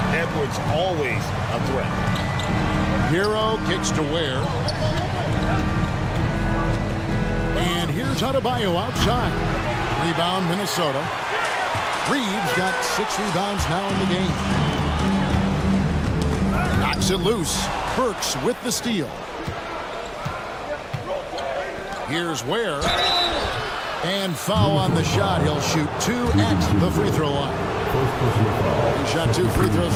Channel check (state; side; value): identical; both; correlation 1.00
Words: Edwards always a threat. Hero kicks to Ware. And here's Adebayo outside. Rebound Minnesota. Reeves got 6 rebounds now in the game. Knocks it loose. Burks with the steal. Here's Ware. And foul on the shot. He'll shoot 2 at the free throw line. He shot 2 free throws